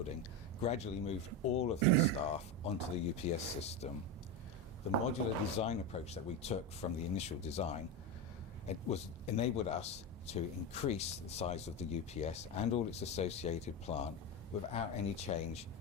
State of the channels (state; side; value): normal; both; correlation 0.16